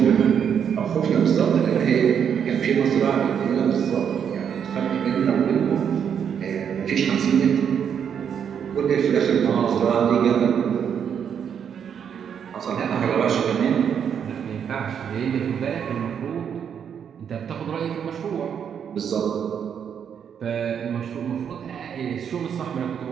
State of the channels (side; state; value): left; quieter; 7.9 dB